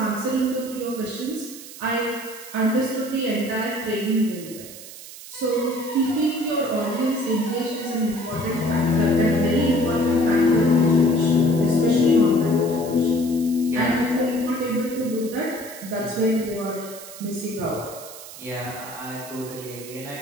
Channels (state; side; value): noise; right; hiss, 15 dB below the sound